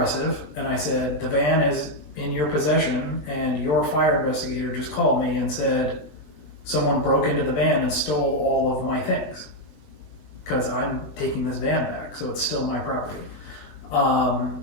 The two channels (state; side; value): late; right; 20 ms